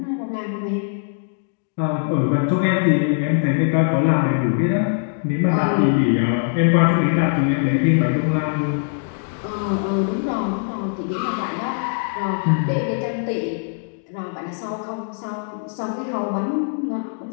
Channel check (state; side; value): silent; right; digital silence